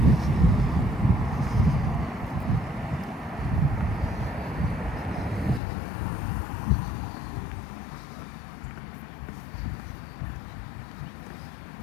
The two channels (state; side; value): drops out; right; at 5.6 s